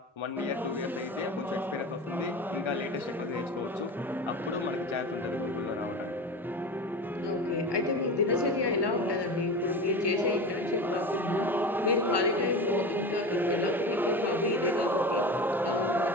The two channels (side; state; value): both; normal; correlation 0.28